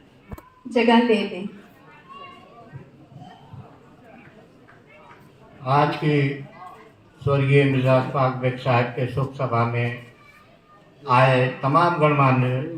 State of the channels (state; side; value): identical; both; correlation 1.00